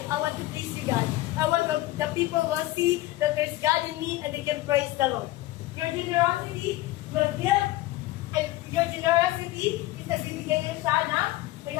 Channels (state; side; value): quieter; right; 17.4 dB